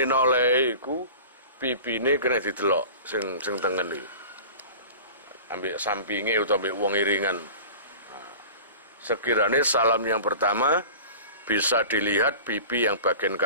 noleh iku pipine kena didelok sing tengen iki. Ambek sampinge utawa ambek wong iringan. Sekiranya salam yang pertama bisa dilihat pipi yang bagian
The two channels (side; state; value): both; inverted; correlation -0.38